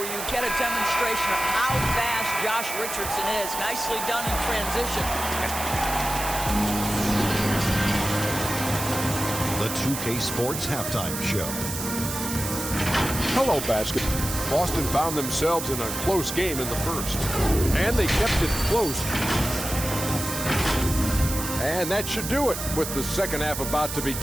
you get a demonstration of how fast Josh Richardson is. Nicely done in transition. The 2K Sports Halftime Show. Hello, basket. Boston found themselves in a close game in the first. And they kept it close. And that should do it. With the second half about to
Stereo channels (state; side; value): noise; right; hiss, 6 dB below the sound